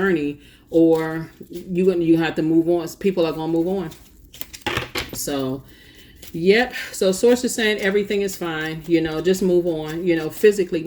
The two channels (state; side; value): identical; both; correlation 1.00